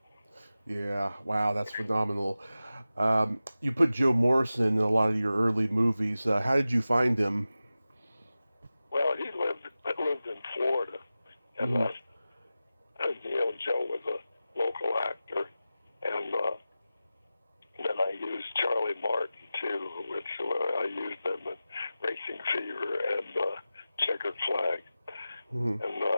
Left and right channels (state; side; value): inverted; both; correlation -0.95